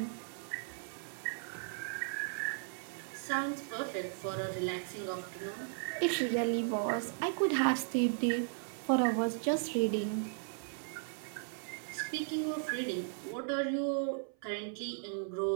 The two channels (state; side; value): silent; left; 54 dB below the other